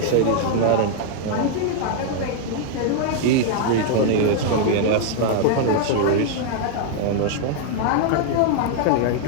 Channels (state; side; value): different; both; correlation 0.00